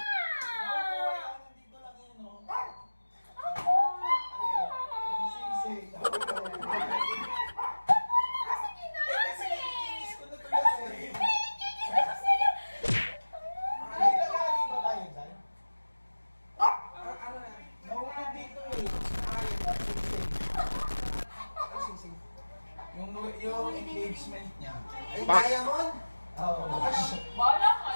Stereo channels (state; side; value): inverted; both; correlation -1.00